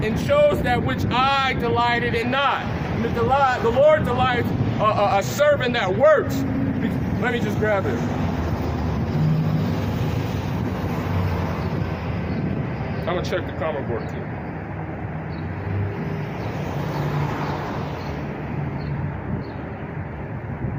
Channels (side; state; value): both; identical; correlation 1.00